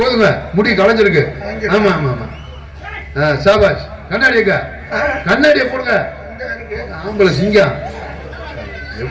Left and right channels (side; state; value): both; identical; correlation 1.00